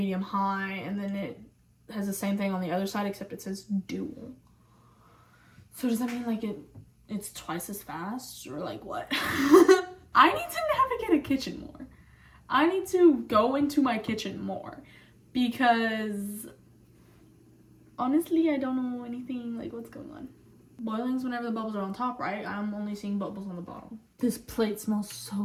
high, and then it has the same thing on the other side, except it says dual. So does that mean like it's twice as fast, or like what? I need to navigate a kitchen more. I need to go into my kitchen more, because honestly, I don't know anything like what's going on. Boiling's whenever the bubbles are on top, right? I'm only seeing bubbles on the bottom. This plate smells so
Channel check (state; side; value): identical; both; correlation 1.00